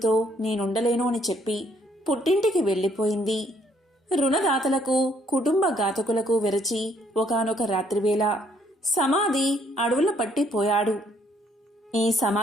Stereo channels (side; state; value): both; normal; correlation 0.67